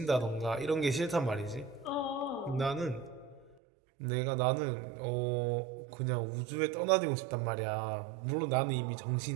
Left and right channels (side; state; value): left; drops out; at 3.6 s